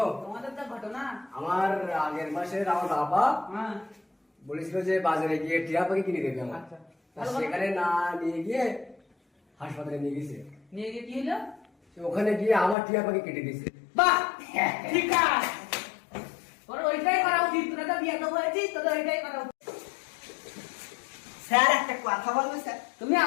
তোমাদের তো ঘটনা। আমার আগের মাসের আমার বাবা হ্যাঁ বলেছিল যে বাজারে গিয়ে টিয়া পাখি কিনে দেবে আমার। আচ্ছা। তা সেখানে না নিয়ে গিয়ে হাসপাতালে নিয়ে গেছে। নিয়ে গিয়ে কি হলো? ওখানে গিয়ে আমার টিয়া পাখি কেটে দিয়েছে। বাহ, ঠিক আছে, তোর ওইটাই করা উচিত। তোরা তো বিয়ে তো হয়েছিস, তোদের ওইটাই করা উচিত। স্যার একটা কথা বলবো স্যার? তুমি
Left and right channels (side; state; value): right; drops out; at 12.8 s